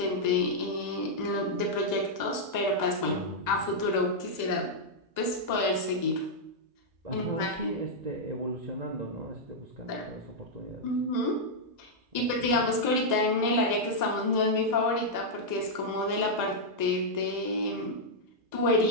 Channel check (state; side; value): late; left; 1.9 ms